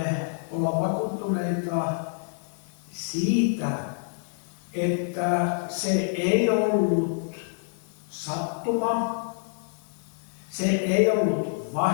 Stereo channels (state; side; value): silent; right; digital silence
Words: olla vakuuttuneita siitä, että se ei ollut sattuma, se ei ollut